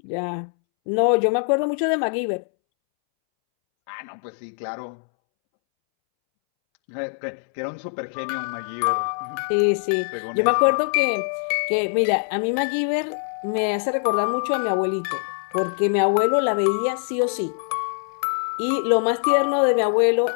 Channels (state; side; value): silent; right; 63 dB below the other